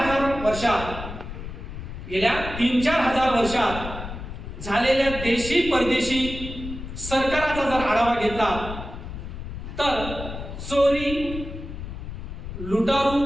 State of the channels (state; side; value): noise; left; rumble, 9 dB below the sound